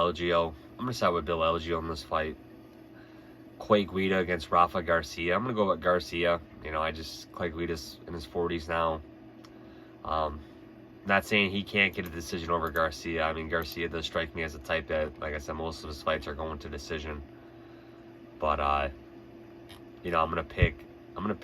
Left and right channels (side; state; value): both; identical; correlation 1.00